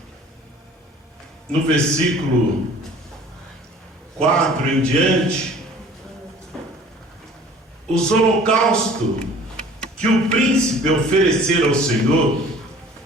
no versículo 4 em diante, os holocaustos que o príncipe oferecer ao Senhor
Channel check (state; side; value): normal; both; correlation 0.49